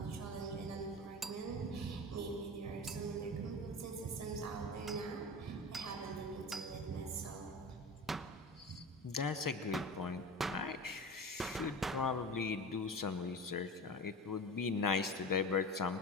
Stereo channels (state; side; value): normal; both; correlation 0.30